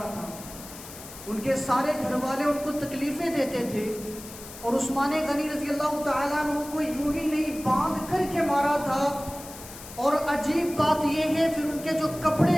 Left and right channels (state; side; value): noise; left; hiss, 15 dB below the sound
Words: تھا. ان کے سارے گھر والے ان کو تکلیفیں دیتے تھے، اور عثمان غنی رضی اللہ تعالیٰ عنہ کو یوں ہی نہیں باندھ کر کے مارا تھا. اور عجیب بات یہ ہے پھر ان کے جو